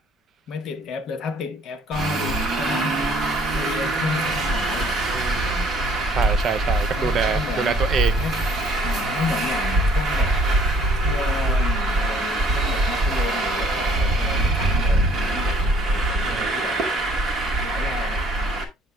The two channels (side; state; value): both; normal; correlation 0.59